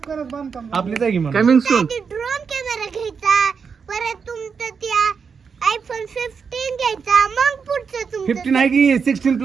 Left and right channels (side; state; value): left; quieter; 5.9 dB